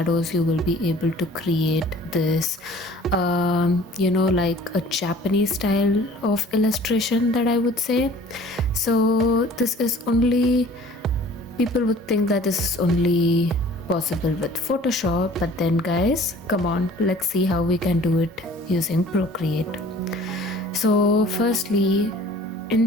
you will be able to create this like a Japanese style of illustration, that I would say. So this is only, people would think that this is only possible with Photoshop, but then guys, come on, let's see how we can do it using Procreate. So firstly,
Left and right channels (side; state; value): both; normal; correlation 0.49